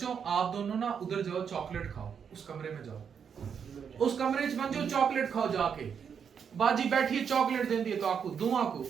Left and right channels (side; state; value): left; quieter; 7.1 dB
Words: आप दोनों ना उधर जाओ, चॉकलेट खाओ, उस कमरे में जाओ, उस कमरे च जो चॉकलेट खाओ जाके। बाजी बैठी चॉकलेट देती है तो आपको दूं, आपको